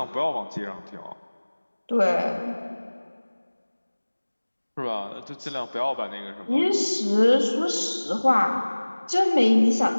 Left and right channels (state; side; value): inverted; both; correlation -1.00